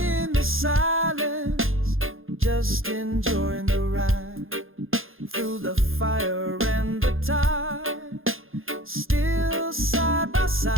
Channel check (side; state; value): left; late; 0.60 ms